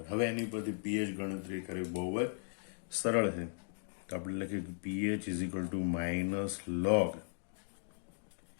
હવે એની પરથી pH ગણતરી કરવી બહુ જ સરળ છે. તો આપણે લખીએ કે pH is equal two minus log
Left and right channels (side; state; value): right; silent; digital silence